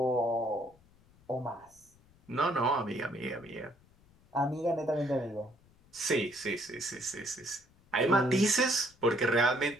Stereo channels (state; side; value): noise; left; rumble, 29 dB below the sound